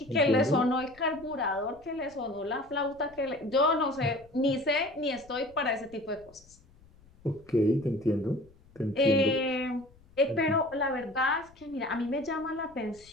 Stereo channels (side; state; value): left; noise; rumble, 27 dB below the sound